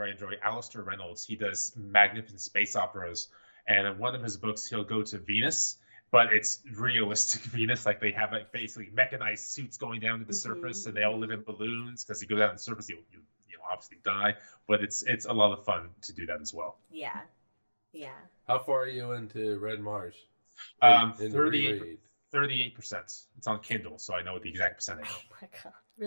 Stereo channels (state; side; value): inverted; both; correlation -1.00